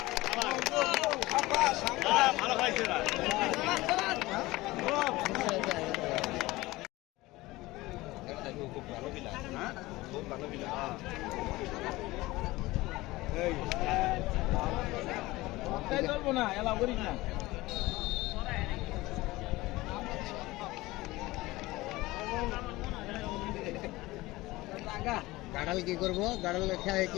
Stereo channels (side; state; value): right; quieter; 19.6 dB